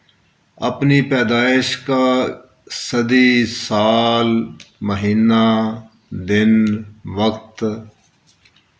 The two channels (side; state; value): both; identical; correlation 1.00